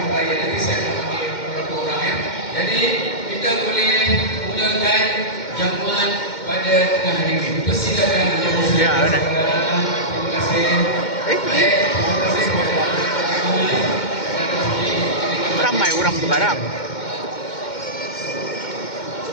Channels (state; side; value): late; right; 2.1 ms